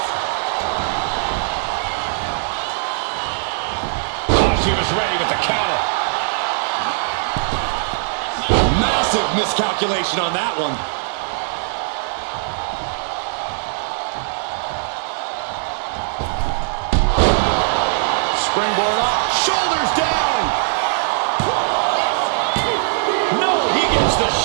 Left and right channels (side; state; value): left; silent; digital silence